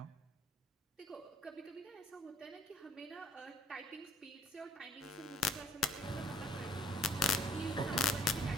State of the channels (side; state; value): both; normal; correlation 0.59